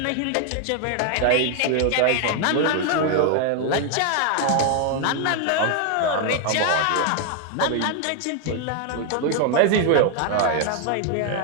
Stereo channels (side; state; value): both; different; correlation 0.00